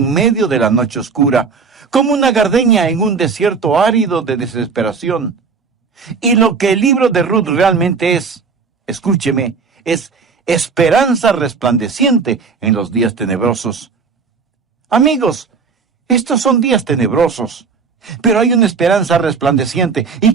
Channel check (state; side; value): quieter; left; 5.2 dB